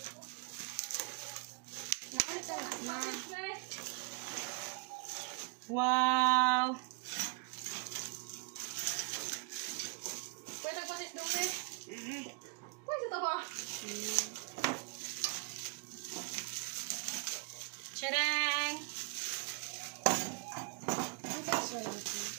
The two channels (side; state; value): left; quieter; 33.2 dB